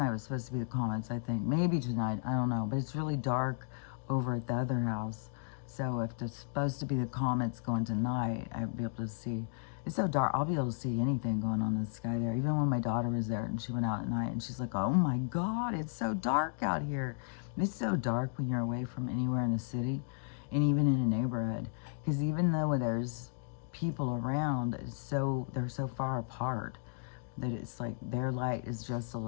was supposed to be the comets, I think. Maybe tonight, I don't know. But it's really dark over at the other house. So if there's supposed to be the comets going tonight, I'll be able to see. It's so dark, I'll be able to see anything going on in the sky there. Even when my daughter was there and she went out at night and she's like, oh my God, it's so dark out here. It's so dark when you're away from anywhere in the city and even in a neighborhood. Because even though there's people around, they're so far apart that it's like their light is just a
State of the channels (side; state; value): right; silent; digital silence